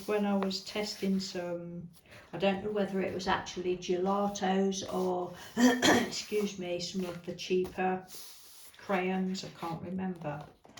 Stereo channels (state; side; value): identical; both; correlation 1.00